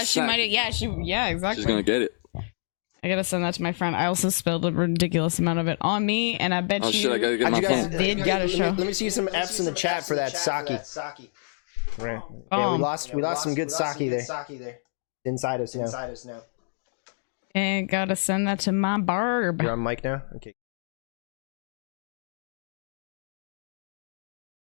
She sack. might. Yeah, exactly. She's gonna get it. I gotta send that to my friend. I also spilled a ridiculous amount of it on me, and I bet Oh you. shit, I gotta get How'd my you guys phone. let me see some F's in the chat for that sake. Right. Yeah, we lost some good sake there. Inside us now. And gotta send that to my barb. You're on mic now? Okay.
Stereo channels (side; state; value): right; silent; digital silence